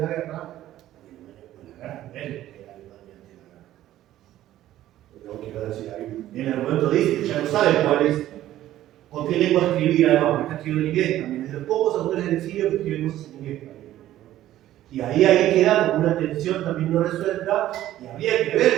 guerra. Él era Alemania antes de la guerra. Lo quiero decir ahí. En el momento dice que ya no sabe cuál es, con qué lengua escribir, además, porque está escribiendo en inglés también. Es de los pocos autores del exilio que escriben cosas en inglés también. Y ahí queda como una tensión también no resuelta, y habría que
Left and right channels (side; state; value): left; quieter; 13.5 dB